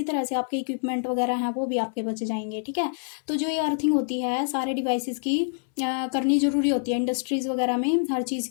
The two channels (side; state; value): right; silent; 61 dB below the other